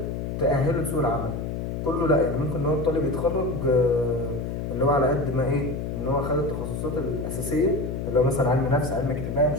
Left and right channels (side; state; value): left; noise; hum, 4 dB below the sound